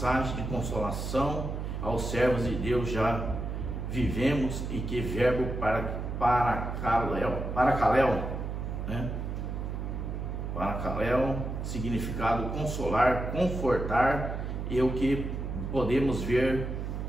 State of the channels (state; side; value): noise; right; hum, 4 dB below the sound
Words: de consolação aos servos de Deus. Já vivemos e que verbo paracaléu, né? Paracaléu, significado consolar, confortar, e o que podemos ver